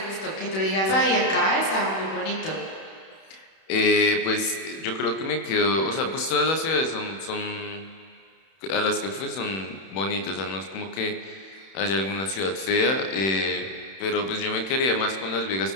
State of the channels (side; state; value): right; late; 31 ms